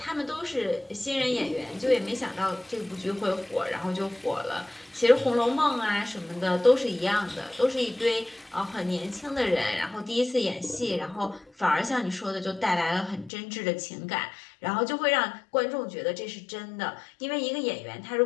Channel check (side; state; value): right; drops out; at 13.3 s